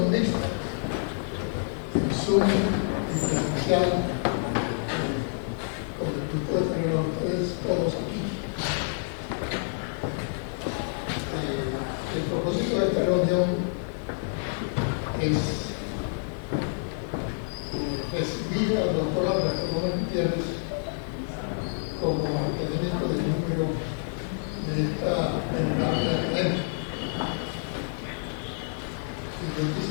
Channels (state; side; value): silent; right; digital silence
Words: mixta, en Zoom y presencial, con el grupo de tener a ustedes todos aquí. El propósito de esta reunión es recibir al doctor Alberto Gómez Gutiérrez como académico de número de esta venerable academia. Y yo